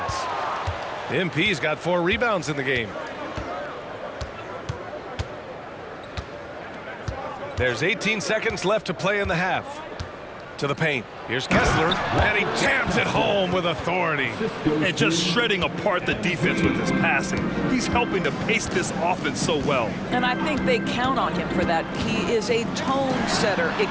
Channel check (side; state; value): both; identical; correlation 1.00